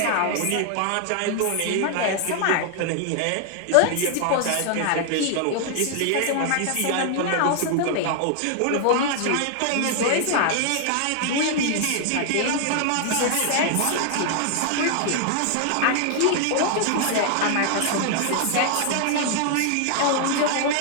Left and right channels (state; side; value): different; both; correlation 0.00